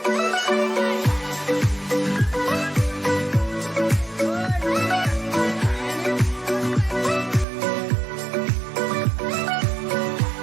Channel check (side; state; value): left; drops out; at 7.5 s